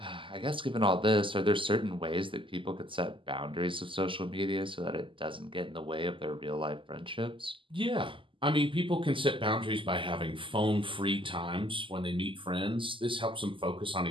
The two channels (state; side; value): late; left; 0.25 ms